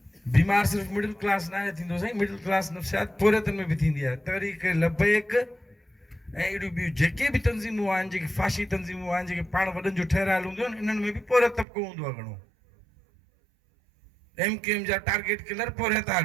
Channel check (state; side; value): drops out; left; at 11.7 s